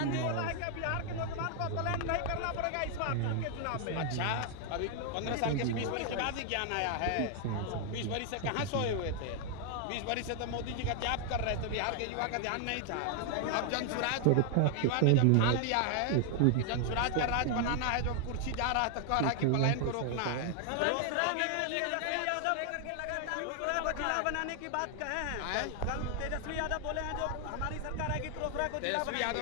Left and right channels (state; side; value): different; both; correlation 0.00